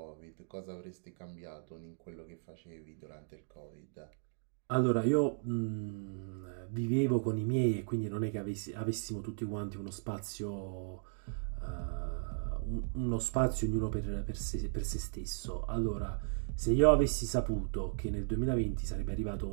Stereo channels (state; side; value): silent; left; digital silence